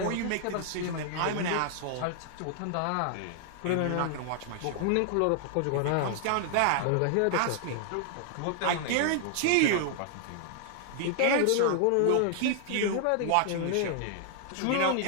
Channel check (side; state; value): both; different; correlation 0.00